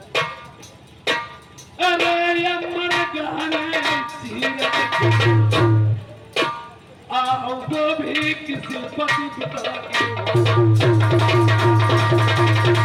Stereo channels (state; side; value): identical; both; correlation 1.00